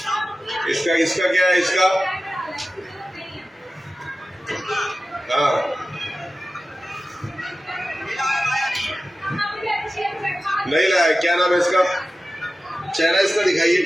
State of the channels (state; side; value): normal; both; correlation 0.95